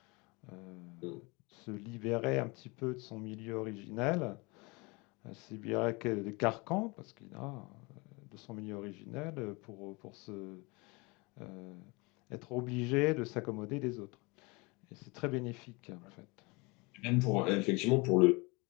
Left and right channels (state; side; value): quieter; right; 27.1 dB